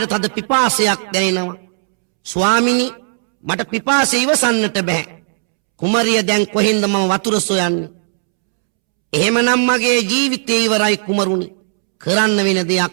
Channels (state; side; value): silent; left; 69 dB below the other